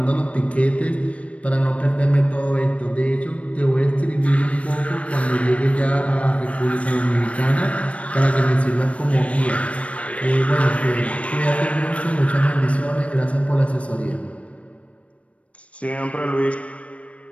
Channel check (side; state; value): right; late; 0.064 ms